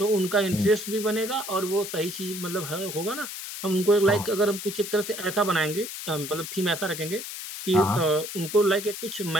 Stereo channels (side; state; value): left; noise; hiss, 8 dB below the sound